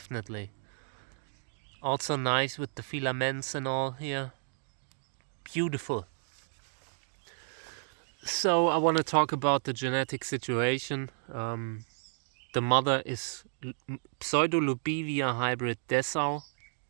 Also nice with the filaments and all here. Beautiful. So I want to talk about the genetic situation. The mother is Pseudolubivia hybrid DESSAU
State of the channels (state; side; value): silent; left; digital silence